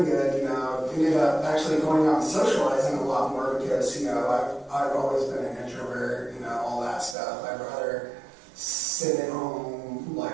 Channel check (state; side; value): drops out; left; at 7.2 s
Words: good, you know. Ended up actually going out and socializing a lot more because, you know, I've always been an introvert, you know, all that stuff. I'd rather sit at home,